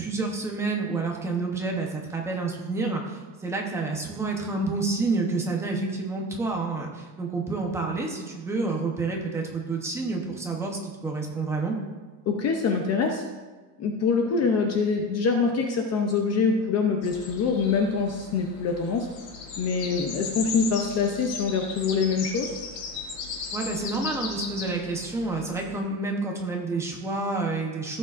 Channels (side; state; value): both; normal; correlation 0.29